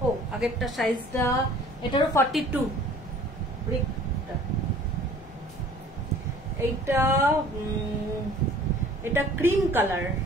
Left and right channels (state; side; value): noise; left; rumble, 21 dB below the sound